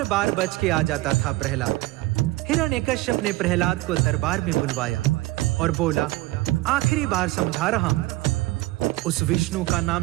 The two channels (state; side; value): quieter; left; 18.9 dB